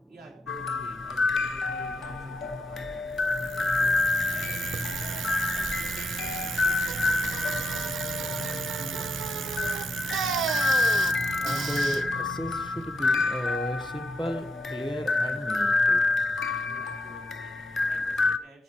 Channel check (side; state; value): both; normal; correlation 0.82